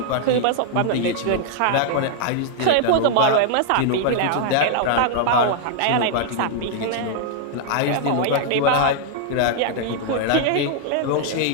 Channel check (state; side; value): different; both; correlation -0.01